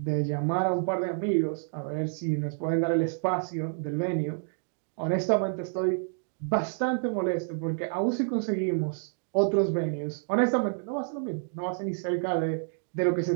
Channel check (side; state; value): left; silent; digital silence